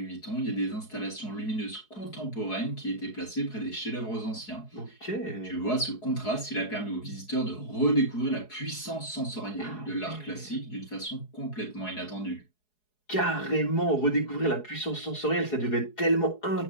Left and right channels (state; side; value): late; right; 4.8 ms